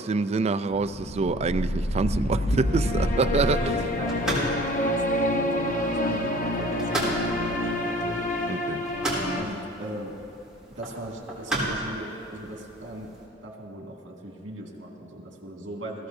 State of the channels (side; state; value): both; normal; correlation 0.48